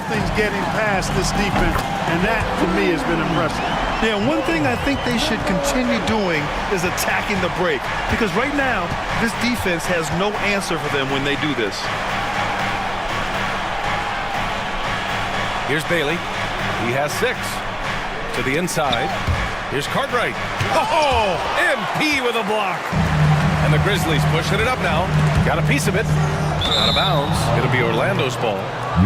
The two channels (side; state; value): both; identical; correlation 1.00